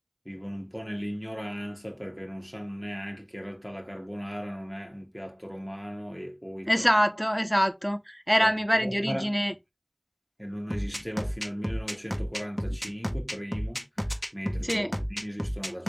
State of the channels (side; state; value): both; identical; correlation 1.00